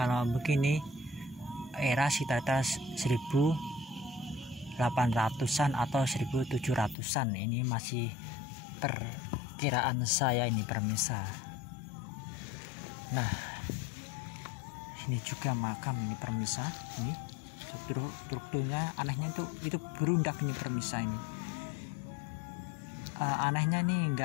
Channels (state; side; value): drops out; right; at 7.0 s